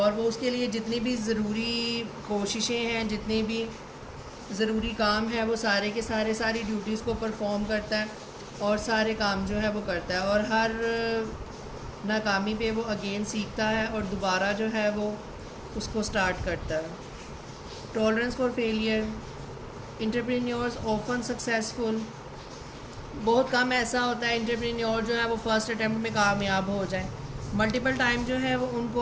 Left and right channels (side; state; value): both; identical; correlation 1.00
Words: वो उसके लिए जितनी भी ज़रूरी कोशिशें हैं, जितनी भी ज़रूरी काम है वो सारे के सारे सारी ड्यूटीज़ को परफॉर्म करता है और सारे काम जो है वो करता है. और हर नाकामी पे वो अगेन सीखता है और दोबारा जो है वो उसको स्टार्ट करता है. Tolerance for failure. Entrepreneurs often successful. बहुत कम ऐसा होता है एंटरप्रेन्योर जो है वो फर्स्ट अटैम्प्ट में कामयाब हो जाए. मल्टीपल टाइम जो है वो